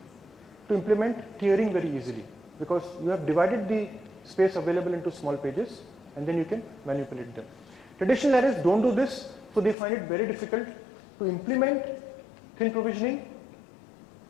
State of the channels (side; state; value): right; drops out; at 9.8 s